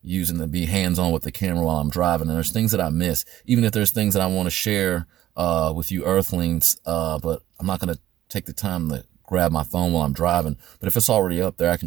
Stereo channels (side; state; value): left; quieter; 13.3 dB